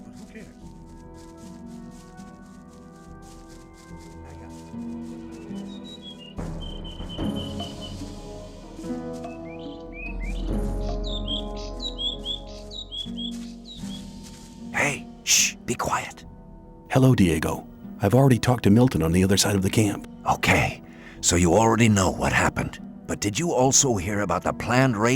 but who cares? Hey, shh, be quiet. Hello, Diego. I've already talked to Milton on the other side of the camp. Okay, so you already know what happened. But did you also hear about the planned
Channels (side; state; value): both; identical; correlation 1.00